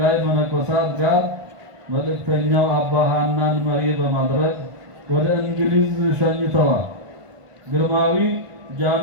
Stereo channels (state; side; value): late; left; 1.5 ms